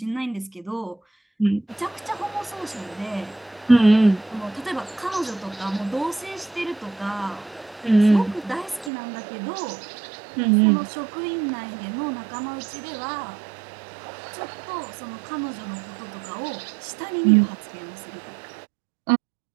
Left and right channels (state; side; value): drops out; left; at 8.9 s